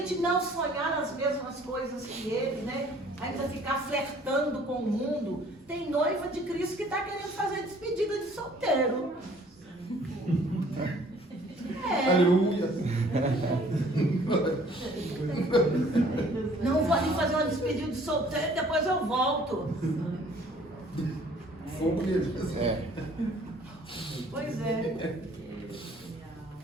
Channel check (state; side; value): normal; both; correlation 0.56